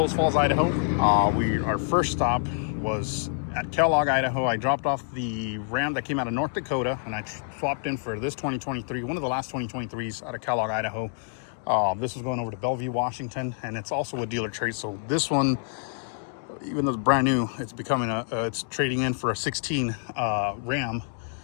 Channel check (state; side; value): silent; right; digital silence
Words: Falls, Idaho. Our first stop was at Kellogg, Idaho. I dropped off the Ram that came out of North Dakota, and I swapped in for this 2023, one of the last 2023s out of Kellogg, Idaho. This was going over to Bellevue, Washington, and it's also a dealer trade. So this one, even though it's brand new, it's becoming it's trading in for a 16 Ram.